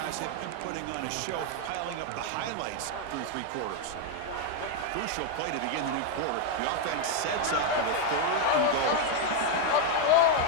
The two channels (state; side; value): different; both; correlation 0.01